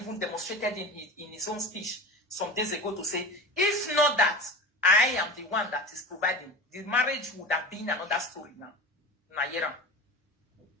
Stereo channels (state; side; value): normal; both; correlation 0.30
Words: demonstrated in his own speech some days ago to say, if not that, I am the one that is providing, the marriage would have been another story now. Nayera.